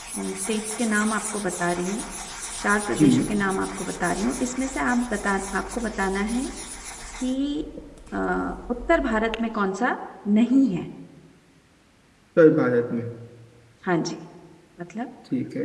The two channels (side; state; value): both; identical; correlation 1.00